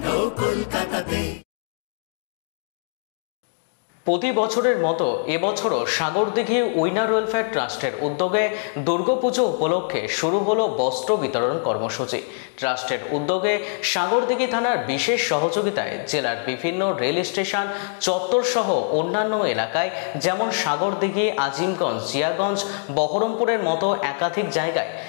কলকাতাতে। প্রতি বছরের মতো এবছরও সাগরদিঘি উইনার ওয়েলফেয়ার ট্রাস্টের উদ্যোগে দুর্গাপুজো উপলক্ষে শুরু হলো বস্ত্র বিতরণ কর্মসূচি। ট্রাস্টের উদ্যোগে সাগরদিঘি থানার বিশেষ সহযোগিতায় জেলার বিভিন্ন রেল স্টেশন চত্বর সহ অন্যান্য এলাকায় যেমন সাগরদিঘি, আজিমগঞ্জ, জিয়াগঞ্জ, বহরমপুরের মতো একাধিক জায়গায়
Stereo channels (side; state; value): right; silent; digital silence